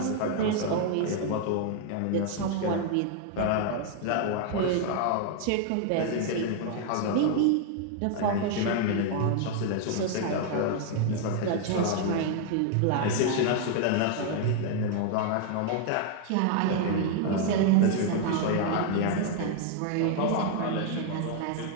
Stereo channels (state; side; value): different; both; correlation 0.00